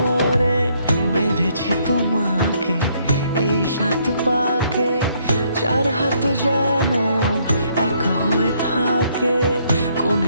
বেঁধেছি তোমাকে এই 7 পাকে, 4 হাত যেন এক হয়ে থাকে।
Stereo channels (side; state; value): both; inverted; correlation -0.69